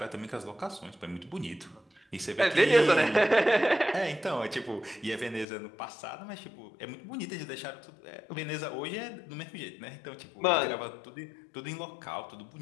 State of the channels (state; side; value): drops out; right; at 5.5 s